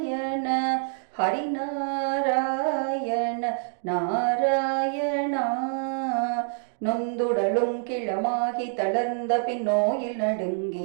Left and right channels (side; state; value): left; silent; digital silence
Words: ஹரிநாராயண நாராயணா. நொந்துடலும் கிளமாகி தளர்ந்த பின் நோயில்